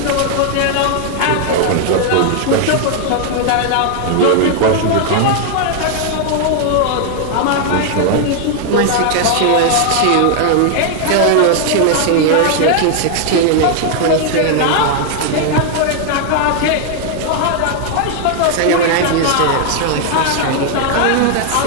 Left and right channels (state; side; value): different; both; correlation 0.00